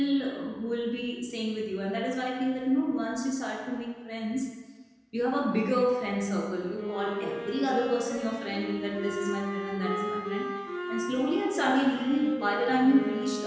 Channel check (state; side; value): identical; both; correlation 1.00